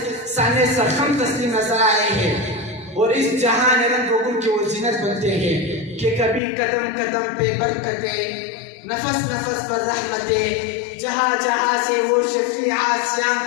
سانے سرخم تسلیم نظر آئے ہیں اور اس جہان رنگ و گل کی وہ زینت بنتے ہیں کہ کبھی قدم قدم پہ برکتیں نفس نفس پر رحمتیں جہاں جہاں سے وہ شفیع آسیاں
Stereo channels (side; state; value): right; drops out; at 6.4 s